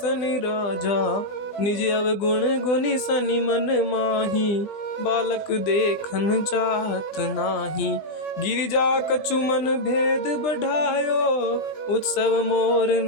राजा। निज अवगुण गुनि शनि मन माही बालक देखन चाहत नाही। गिरिजा कछु मन भेद बढ़ायो उत्सव मोर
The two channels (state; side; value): late; right; 20 ms